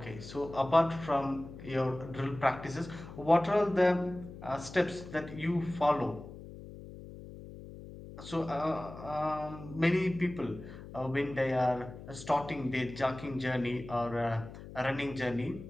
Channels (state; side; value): noise; left; hum, 14 dB below the sound